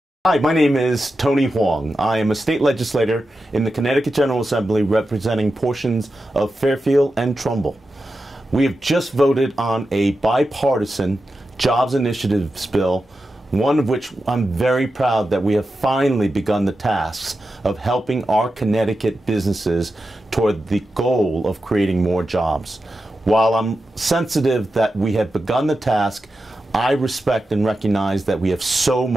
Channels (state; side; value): normal; both; correlation 0.90